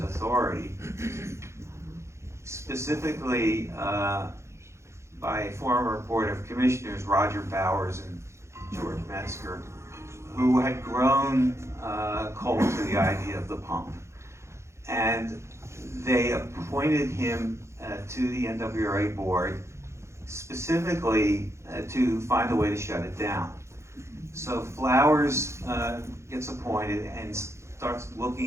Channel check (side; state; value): left; late; 0.13 ms